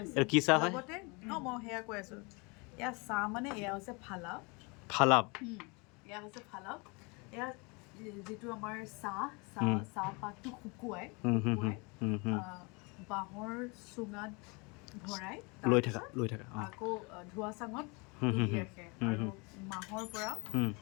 লগতে মই সেয়া কৈ আছোঁ, এয়া চাহ মানে এয়া হৈছে ফালাপ। এয়া হৈছে ফালাপ। এয়া যিটো আমাৰ চাহপাতটো শুকুৱাই বাঁহৰ চুঙাত ভৰাই লৈ থকা আকৌ ধোঁৱা চাঙত তুলি ৰাখে আৰু মাহৰ পৰা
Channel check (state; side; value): quieter; right; 29.5 dB